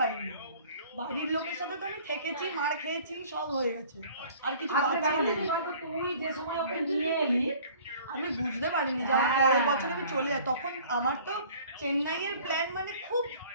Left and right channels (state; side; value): inverted; both; correlation -0.50